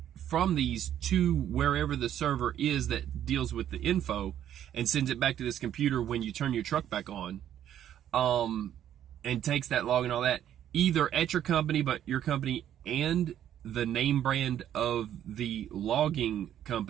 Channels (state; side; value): quieter; left; 10.8 dB